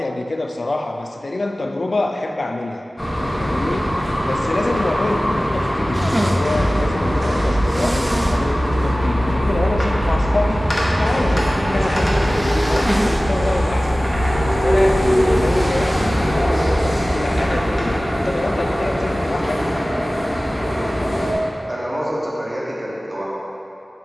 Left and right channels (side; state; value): both; normal; correlation 0.97